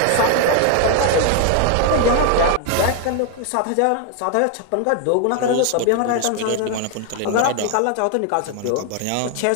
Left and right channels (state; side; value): different; both; correlation 0.01